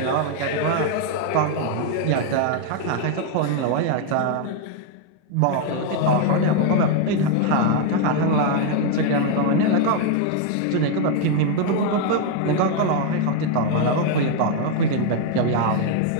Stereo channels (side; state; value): both; different; correlation 0.00